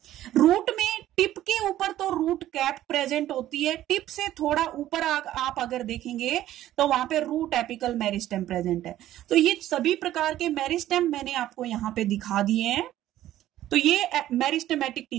रूट में टिप के ऊपर तो रूट कैप प्रेजेंट होती है, टिप से थोड़ा ऊपर आप अगर देखेंगे तो वहां पे रूट एपिकल मेरिस्टेम प्रेजेंट है। तो ये सभी प्रकार के मेरिस्टेम मैंने आपको यहाँ पे दिखा दिए हैं। तो ये मेरिस्टेमेटिक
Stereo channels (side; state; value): left; quieter; 13.5 dB